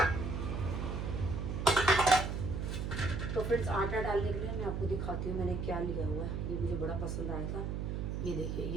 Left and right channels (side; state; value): right; noise; hum, 2 dB below the sound